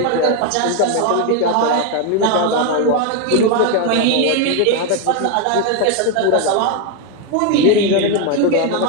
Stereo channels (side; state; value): both; different; correlation 0.01